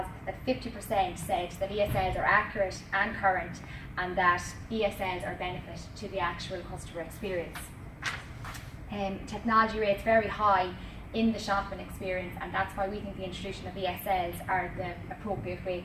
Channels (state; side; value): identical; both; correlation 1.00